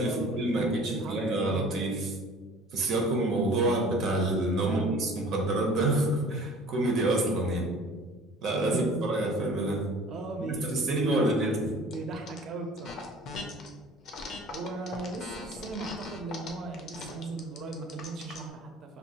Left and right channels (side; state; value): both; normal; correlation 0.47